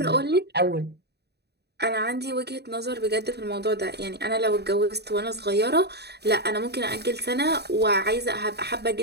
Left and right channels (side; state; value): left; late; 0.48 ms